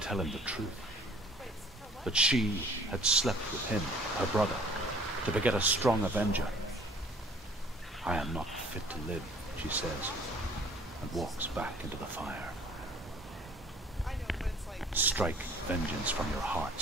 him the truth. That she had slept with him, her brother, to beget a strong avenger. I am not fit to live, she says, and walks back into the fire. Strike vengeance from your heart,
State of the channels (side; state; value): both; normal; correlation 0.52